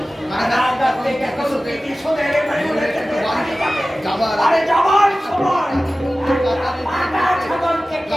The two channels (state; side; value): normal; both; correlation 0.96